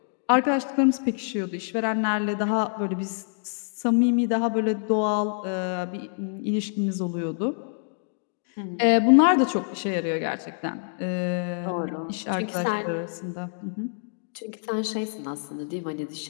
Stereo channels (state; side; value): silent; right; digital silence